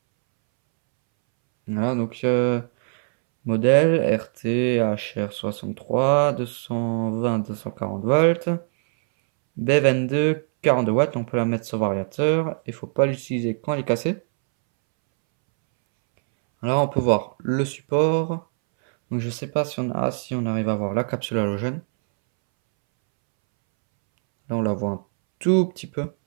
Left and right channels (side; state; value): left; silent; 64 dB below the other